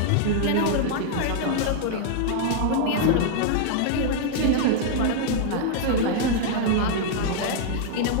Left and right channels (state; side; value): different; both; correlation -0.01